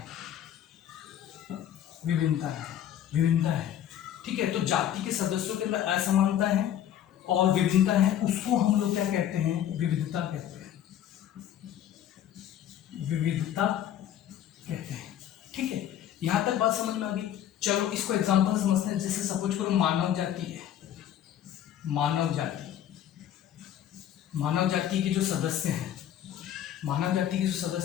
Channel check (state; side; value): quieter; right; 10.7 dB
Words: विभिन्नता है, विभिन्नता है, ठीक है। तो जाति के सदस्यों के अंदर असमानता है और विभिन्नता है, उसको हम लोग क्या कहते हैं, विविधता कहते हैं, विविधता कहते हैं, ठीक है। यहां तक बात समझ में आ गई। चलो इसको एग्जांपल समझते हैं। जैसे सपोज करो मानव जाति है, मानव जाति, मानव जाति के जो सदस्य हैं, मानव जाति के जो